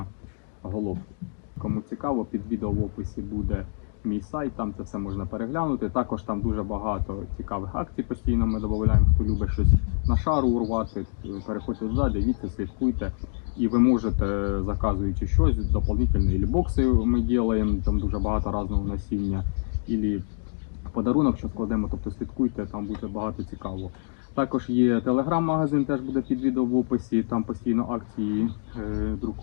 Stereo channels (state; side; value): silent; right; 61 dB below the other